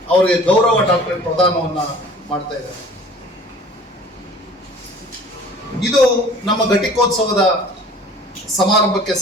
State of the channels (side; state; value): both; normal; correlation 0.48